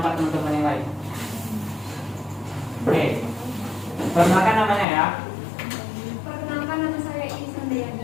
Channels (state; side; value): drops out; right; at 4.9 s